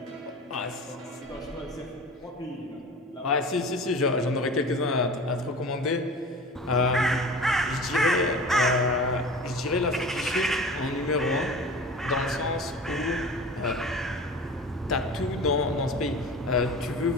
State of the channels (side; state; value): both; normal; correlation 0.36